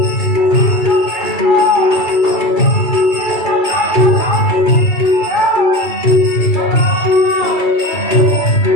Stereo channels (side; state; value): right; late; 2.3 ms